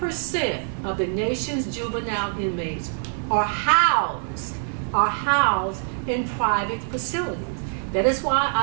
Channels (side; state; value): left; silent; 58 dB below the other